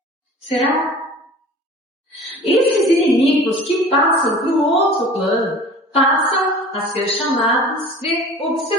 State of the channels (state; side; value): normal; both; correlation 0.42